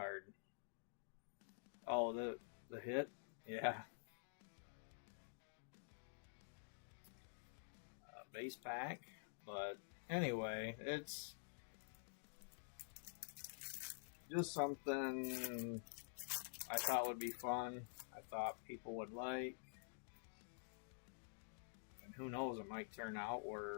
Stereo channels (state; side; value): silent; right; digital silence